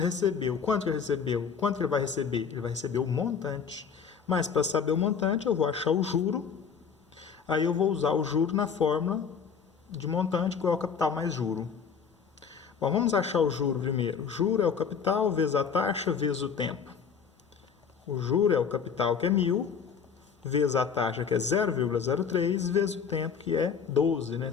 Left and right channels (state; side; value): quieter; right; 6.5 dB